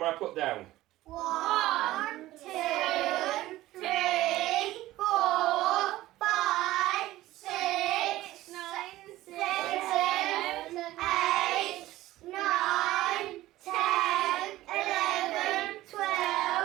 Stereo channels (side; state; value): left; quieter; 16.2 dB